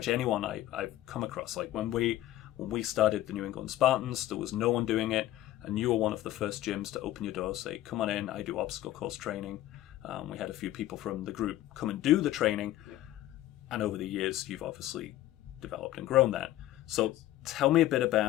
anyone I've come across. Like when we started the New England Spahtens, there was no one doing it, and you were one of the first gyms to open your door, say, come on in, I do obstacle course training. We had a few people from the group come and do the training, and over the years, you've obviously developed and grown that. So tell me a bit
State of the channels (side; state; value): right; quieter; 14.5 dB